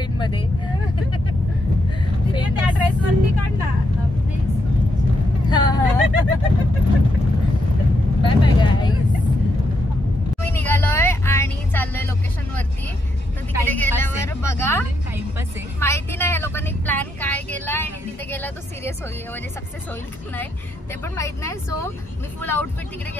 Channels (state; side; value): normal; both; correlation 0.80